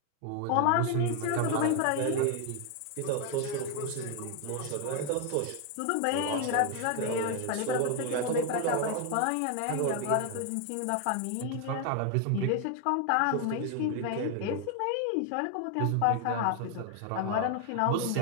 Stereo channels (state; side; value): different; both; correlation 0.01